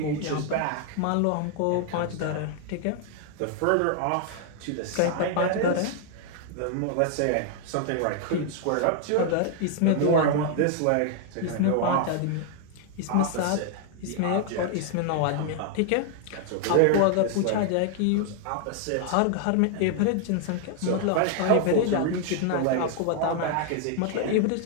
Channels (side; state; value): both; different; correlation 0.00